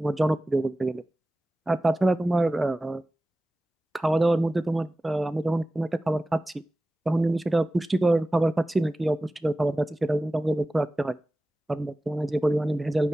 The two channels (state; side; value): normal; both; correlation 0.97